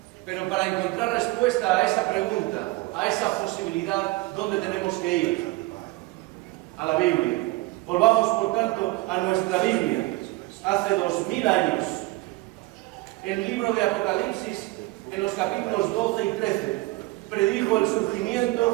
Pero para encontrar respuesta a esa pregunta, a esa posibilidad, ¿dónde tenemos que ir? A la Biblia. Volvamos, por tanto, a nuestra Biblia. Hace 2000 años, el libro de Apocalipsis, en los capítulos 12 y 13, predijo el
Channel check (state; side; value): quieter; left; 20.9 dB